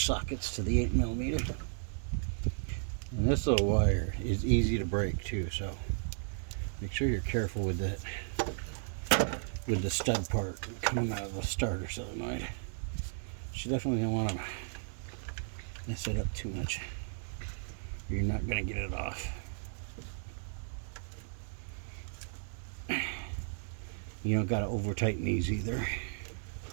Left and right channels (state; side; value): silent; left; 55 dB below the other